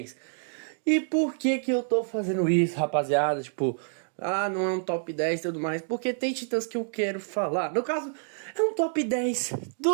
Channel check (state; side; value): silent; left; digital silence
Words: E por que que eu tô fazendo isso, rapaziada? Tipo, não é um top 10 e tudo mais. Porque tem titãs que eu quero falar. No caso, é um top 10